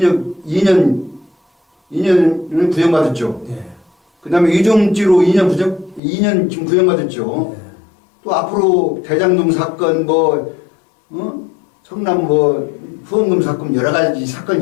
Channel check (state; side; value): drops out; right; at 6.0 s